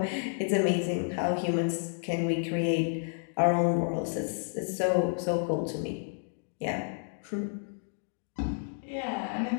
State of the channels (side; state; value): right; silent; digital silence